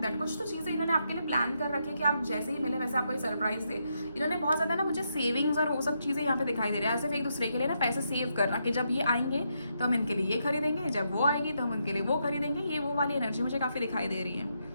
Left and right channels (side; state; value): both; inverted; correlation -0.80